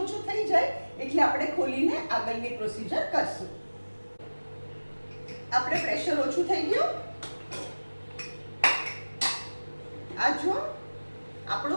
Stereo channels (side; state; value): both; inverted; correlation -1.00